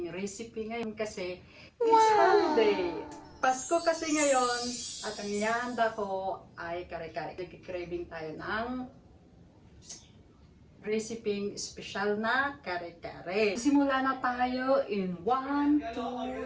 recipe ngayon kasi it's holiday. Pasko kasi ngayon at ang ihanda ko ay kare-kare. Nagki-craving tayo ng recipe special na kare-kare. Simula na tayo in 1,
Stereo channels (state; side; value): identical; both; correlation 1.00